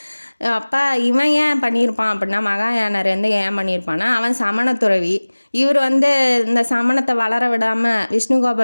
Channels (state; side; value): inverted; both; correlation -1.00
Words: அப்போ இவன் ஏன் பண்ணியிருப்பான் அப்படின்னா, மகாயானர் வந்து ஏன் பண்ணியிருப்பான்னா, அவன் சமணத்துறவி. இவர் வந்து இந்த சமணத்தை வளர விடாமல்,